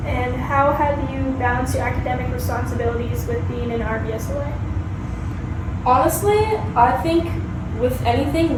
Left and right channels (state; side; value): identical; both; correlation 1.00